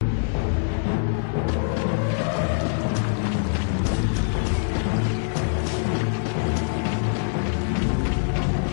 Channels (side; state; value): right; silent; digital silence